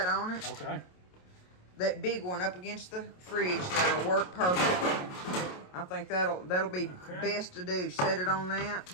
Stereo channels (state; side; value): late; right; 27 ms